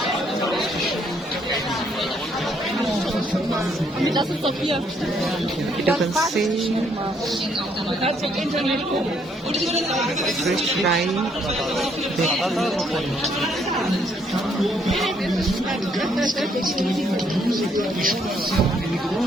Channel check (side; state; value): both; normal; correlation 0.70